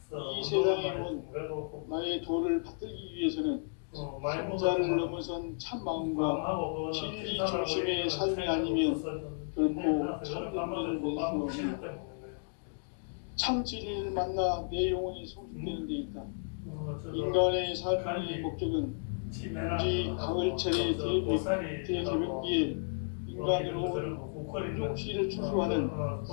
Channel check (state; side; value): silent; right; digital silence